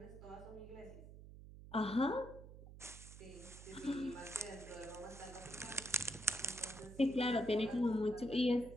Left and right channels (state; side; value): noise; right; hum, 15 dB below the sound